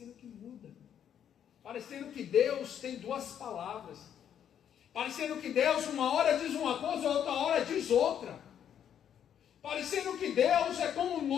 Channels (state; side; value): quieter; right; 9.2 dB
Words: que muda. Parecendo que Deus tem duas palavras. Parecendo que Deus uma hora diz uma coisa, outra hora diz outra. Parecendo que Deus é como